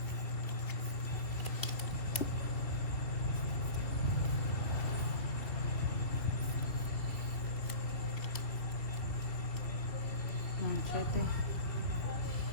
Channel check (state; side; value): late; right; 2.7 ms